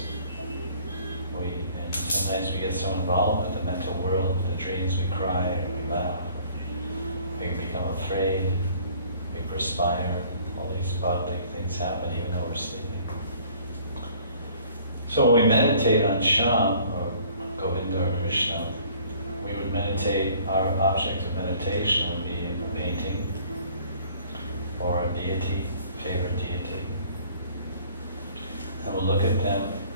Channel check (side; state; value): both; inverted; correlation -0.55